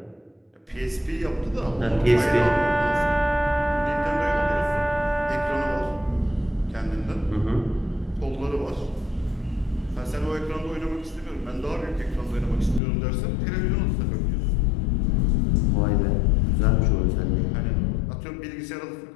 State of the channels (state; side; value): drops out; right; at 12.8 s